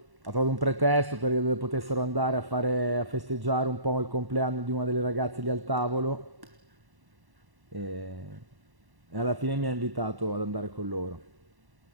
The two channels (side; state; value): left; late; 1.1 ms